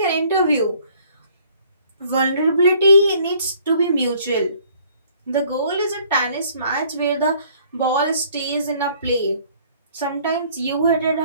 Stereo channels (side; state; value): both; inverted; correlation -0.59